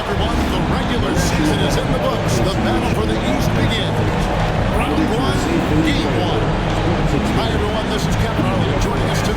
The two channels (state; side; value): identical; both; correlation 1.00